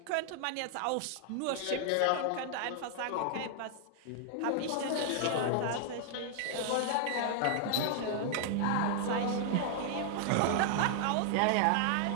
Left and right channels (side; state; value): both; different; correlation 0.00